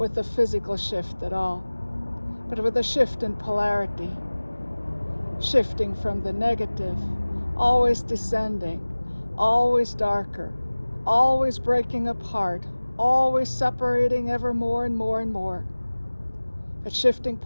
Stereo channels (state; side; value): inverted; both; correlation -1.00